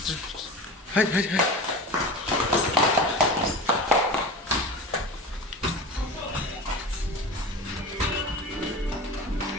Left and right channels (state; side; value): normal; both; correlation 0.31